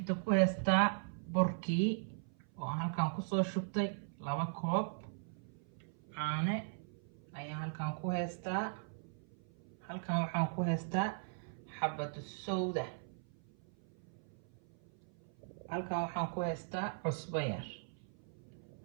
ku haystaa burkii oo aan halkan ku soo shubtay 2 koob caano ayaan halkan ku haystaa. halkan waxaan ku haystaa xabad sowda. halkan waxaan ku haystaa cusbo yar.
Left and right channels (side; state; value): left; silent; 52 dB below the other